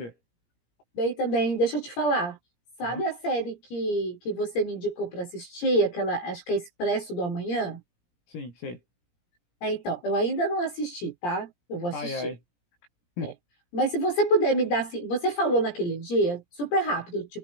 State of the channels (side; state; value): right; late; 17 ms